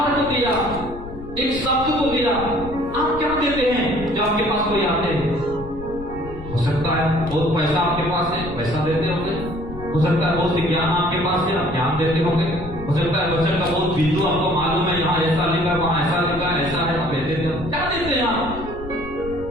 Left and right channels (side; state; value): left; noise; rumble, 12 dB below the sound